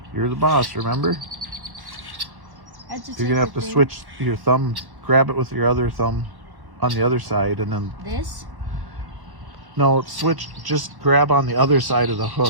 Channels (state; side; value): late; left; 1.1 ms